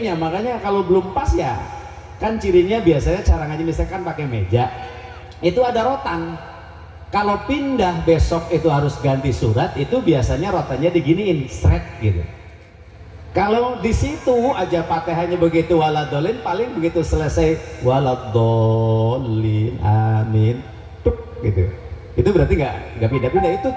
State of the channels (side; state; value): both; identical; correlation 1.00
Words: Makanya kalau belum pas ya kan cirinya biasanya cara ngaji misalkan pakai meja itu ada rotan. Kalau pindah besok itu harus ganti surat, itu biasanya rotannya diginiin seret gitu. Kalau di situ aja Fatihahnya begitu waladhdallin, paling begitu selesai waladhdallin amin tuk gitu. Itu berarti nggak pindah-pindah. Itu